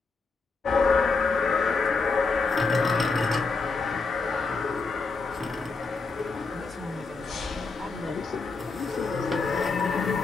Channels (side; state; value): right; quieter; 4.1 dB